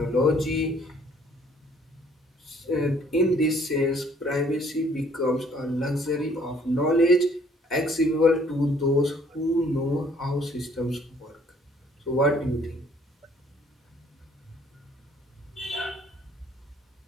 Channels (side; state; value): both; normal; correlation 0.60